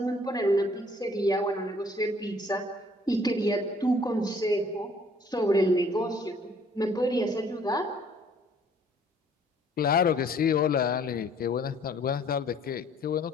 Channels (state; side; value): normal; both; correlation 0.58